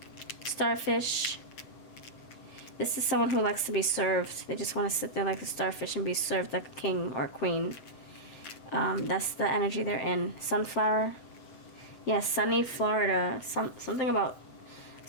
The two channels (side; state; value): right; late; 7.7 ms